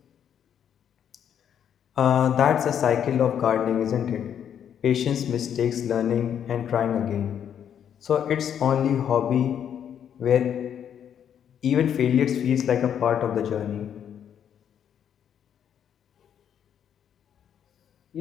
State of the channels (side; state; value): right; quieter; 9.0 dB